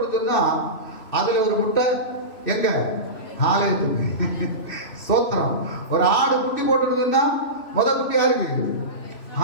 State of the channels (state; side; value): late; right; 3.0 ms